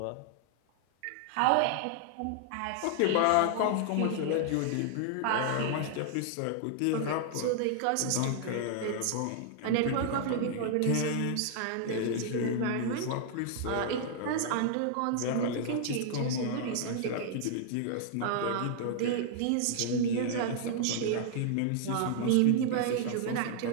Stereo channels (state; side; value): different; both; correlation -0.01